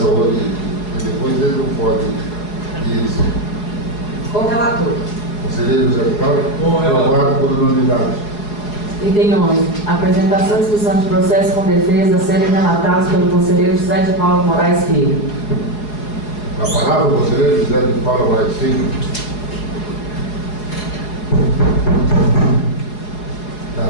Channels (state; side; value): late; right; 4.8 ms